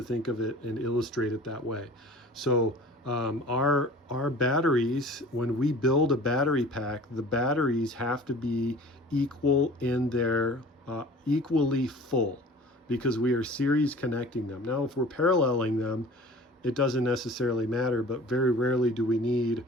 think of it and illustrate it that way. So our batteries, when we build a battery pack, the batteries have to be equal in their equally full, because we are series connecting them. Now, if we're paralleling them, it doesn't necessarily matter, but very rarely do we need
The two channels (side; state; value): both; normal; correlation 0.44